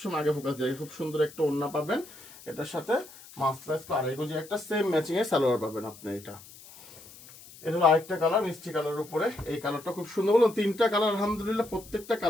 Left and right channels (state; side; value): noise; left; hiss, 20 dB below the sound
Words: আগে ফোকাস দিয়ে। খুব সুন্দর একটা ওড়না পাবেন, এটার সাথে মাস্টার্স আড়াই গজি একটা সেম ম্যাচিং এর সালোয়ার পাবেন আপনি। এটা হলো আরেকটা কালার, মিষ্টি কালারের উপরে। এই কালারটা খুব সুন্দর, বলুন তিনটা কালার আলহামদুলিল্লাহ, প্রত্যেকটা